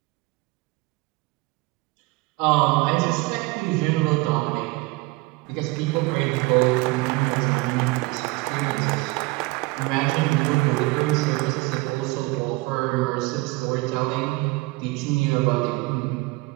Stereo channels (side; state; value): left; quieter; 23.5 dB